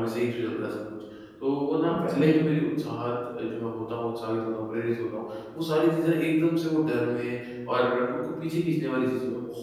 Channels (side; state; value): both; identical; correlation 1.00